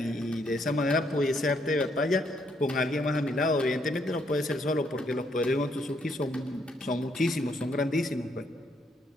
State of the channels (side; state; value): both; normal; correlation 0.73